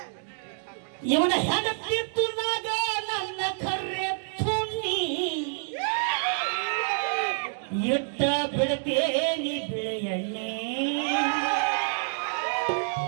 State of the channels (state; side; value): silent; left; digital silence